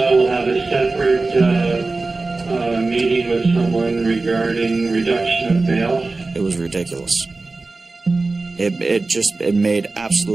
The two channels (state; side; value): quieter; left; 3.5 dB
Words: have a separate meeting with someone regarding reduction of bail. It was ridiculous. It made